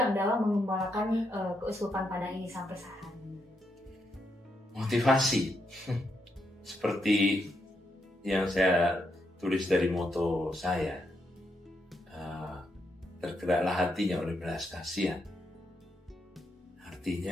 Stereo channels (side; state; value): both; normal; correlation 0.80